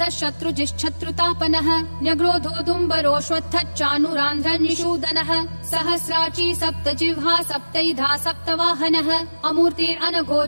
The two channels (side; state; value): both; inverted; correlation -1.00